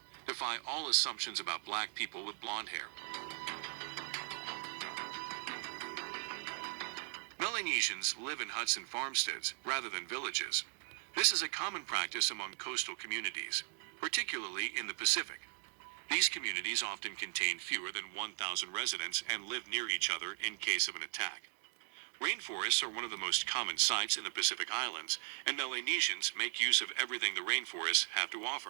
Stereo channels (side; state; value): left; quieter; 39.2 dB